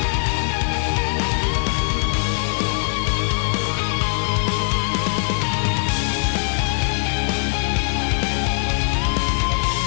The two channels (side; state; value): right; silent; digital silence